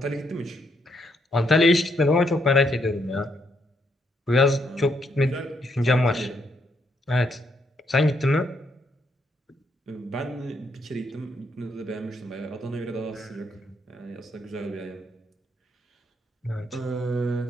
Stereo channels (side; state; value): both; normal; correlation 0.75